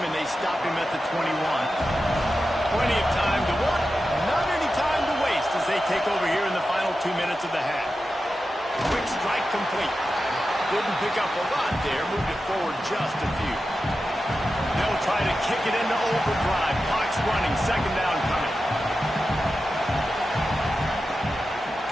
they stop him at the 21. Plenty of time to work, not any time to waste as they take over here in the final 2 minutes of the half. Quick strike complete. Didn't pick up a lot there, moved it forward just a few. They'll try to kick it into overdrive. Clock's running, 2nd down coming.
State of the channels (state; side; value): normal; both; correlation 0.91